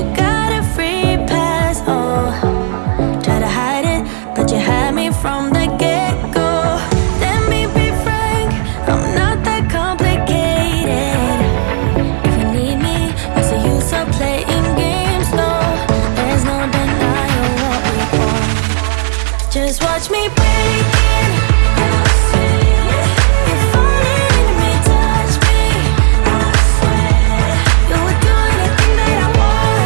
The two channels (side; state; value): left; silent; digital silence